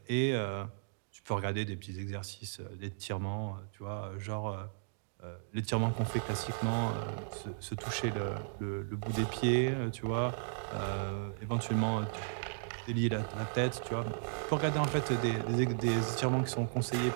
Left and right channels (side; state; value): left; silent; digital silence